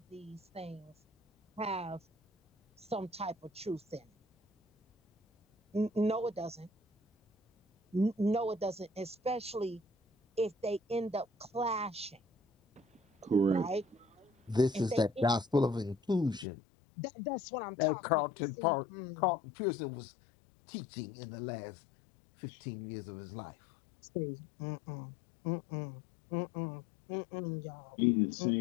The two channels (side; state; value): right; drops out; at 16.4 s